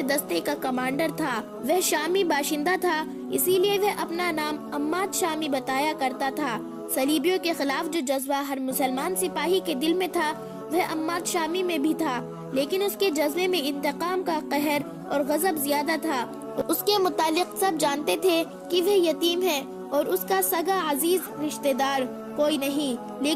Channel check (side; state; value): both; identical; correlation 1.00